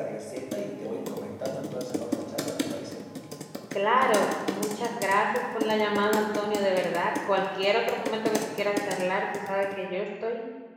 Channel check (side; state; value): both; identical; correlation 1.00